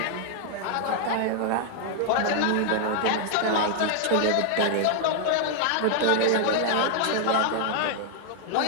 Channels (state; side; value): different; both; correlation 0.00